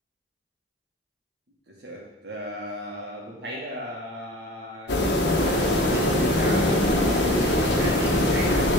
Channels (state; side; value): normal; both; correlation 0.40